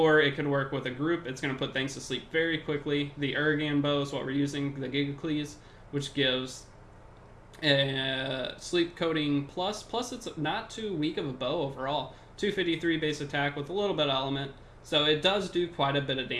it could work with a group. It's going to put things to sleep very quickly. The Urgan bow is what we're using, the Gigacles, which gives sleep coating plus it's not too weak of a bow overall. 253 base attack with a little bit of element, so it does do quite a bit of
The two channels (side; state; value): both; identical; correlation 1.00